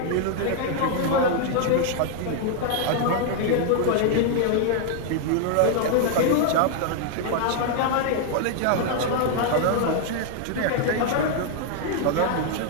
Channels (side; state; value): both; different; correlation 0.00